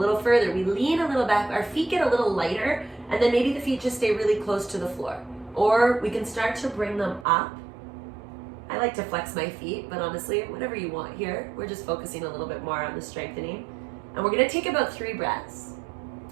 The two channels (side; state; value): left; drops out; at 7.2 s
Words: further. We lean a little back, our feet get a little lighter, and then maybe the feet just stay really close to the floor. Or we can start to bring them up. I like to flex my feet, but honestly, whatever you want here. We're just focusing a little bit more on the strengthening. And we're gonna take about 3 breaths,